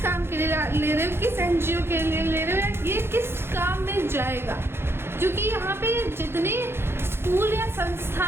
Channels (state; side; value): late; left; 0.11 ms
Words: काम के लिए ले रहे हो, किस NGO के लिए ले रहे हो, ये किस काम में जाएगा। क्योंकि यहाँ पे जितने स्कूल या